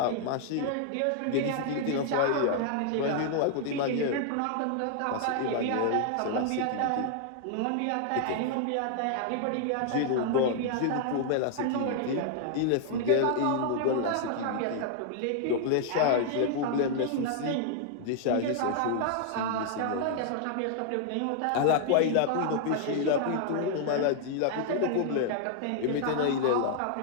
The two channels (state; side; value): different; both; correlation -0.01